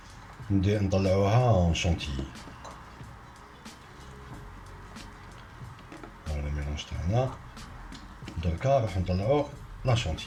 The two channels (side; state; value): both; identical; correlation 1.00